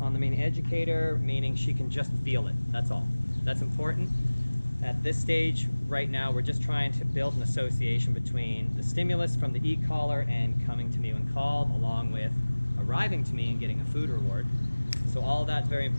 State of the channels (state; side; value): inverted; both; correlation -1.00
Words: the main educator, meaning she can just feel it. That's all. That's important. At this stage, right now, we're just trying to build an association between the stimulus from the e-collar and coming to me when called, along with arriving to me and getting a food reward. So all that's very